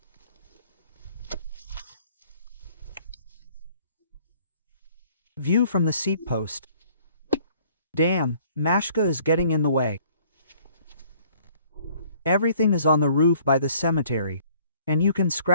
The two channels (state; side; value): inverted; both; correlation -0.58